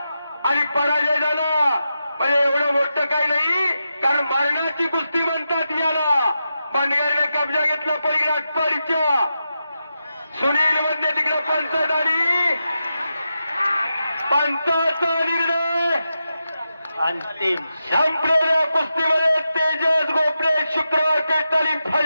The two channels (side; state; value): both; inverted; correlation -0.88